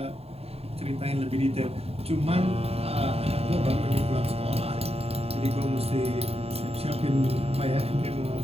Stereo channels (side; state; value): left; late; 0.29 ms